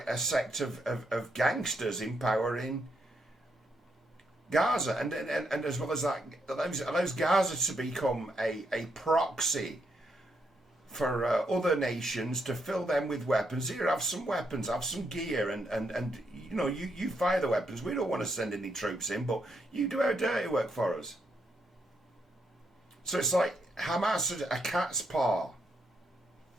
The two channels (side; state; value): both; normal; correlation 0.78